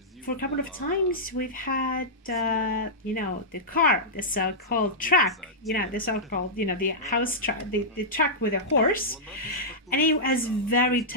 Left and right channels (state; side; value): normal; both; correlation -0.11